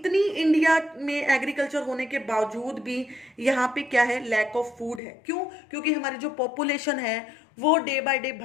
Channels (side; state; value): right; drops out; at 5.0 s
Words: इंडिया में एग्रीकल्चर होने के बावजूद भी यहाँ पे क्या है, लैक ऑफ फूड है। क्यों? क्योंकि हमारी जो पॉपुलेशन है वो डे बाय डे